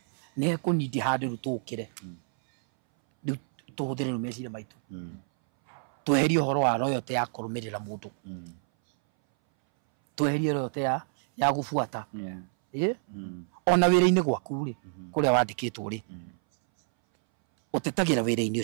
nĩ ekũnindi handũ rĩu tũkĩre rĩu tũhũthĩre rĩu meciria maitũ tweherie ũhoro wa royalty ya kũrũmĩrĩra mũndũ tweherie royalty ya gũbuata ona wĩra-inĩ gwaku rĩ kũrĩa wandĩkĩtwo rĩ ũtetagĩra wĩra-inĩ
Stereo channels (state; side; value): silent; left; 59 dB below the other